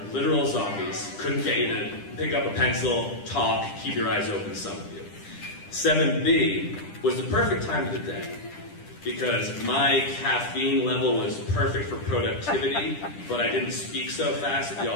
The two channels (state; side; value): late; right; 10 ms